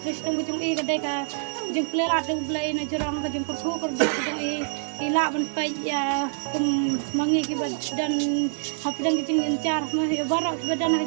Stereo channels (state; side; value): silent; left; digital silence